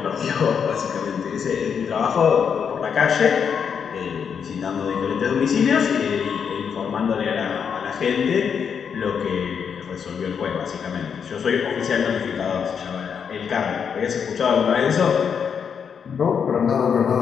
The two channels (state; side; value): quieter; right; 7.0 dB